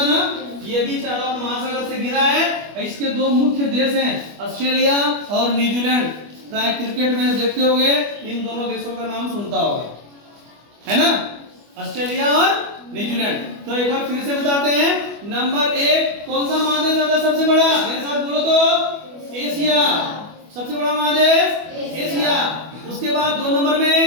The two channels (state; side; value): late; left; 25 ms